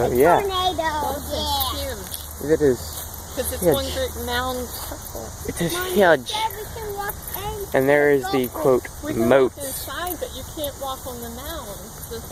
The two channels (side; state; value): both; identical; correlation 1.00